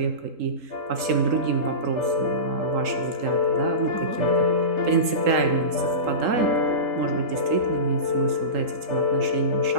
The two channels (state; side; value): late; left; 3.8 ms